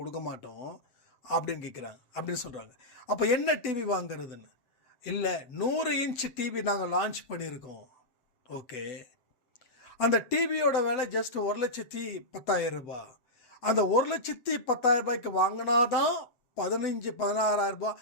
மாட்டோம் அப்படின்னு கேட்குறாங்க, அப்படின்னு சொல்கிறாங்க. அப்போ என்ன டிவி வாங்குறதுன்னு? இல்லை 100 இன்ச் டிவி நாங்கள் லான்ச் பண்ணியிருக்கோம். ஓகே, அந்த டிவியோட விலை ஜஸ்ட் 1,10,000 ரூபாய். அந்த 1,10,000 ரூபாய்க்கு வாங்கினா தான் 15,000-16,000 ரூபாய்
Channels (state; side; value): late; right; 7.9 ms